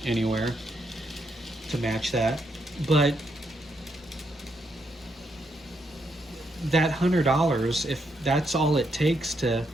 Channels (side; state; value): both; normal; correlation 0.78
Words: anywhere to match that. But that $100, if that's all it takes to